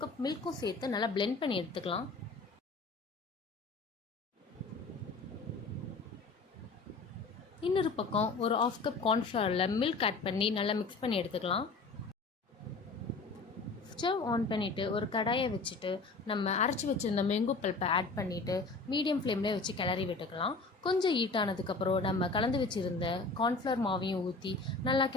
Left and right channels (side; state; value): right; quieter; 3.9 dB